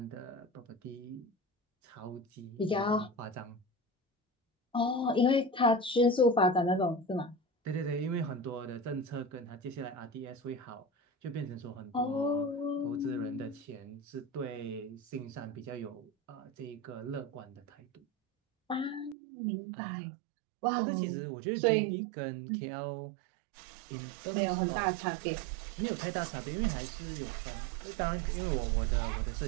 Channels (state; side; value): drops out; left; at 19.2 s